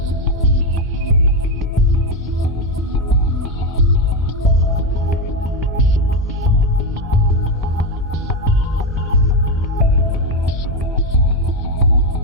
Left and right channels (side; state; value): both; normal; correlation 0.10